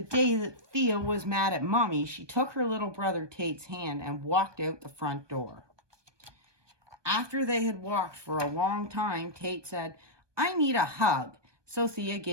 day that Thea was mad at Mommy, she took her little brother Tate's hand and walked out the front door. After they had walked for a long time, Tate said, "I need a hug." So Thea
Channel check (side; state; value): left; late; 1.2 ms